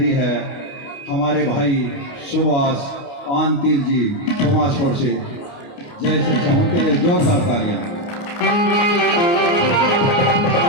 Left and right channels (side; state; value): right; late; 29 ms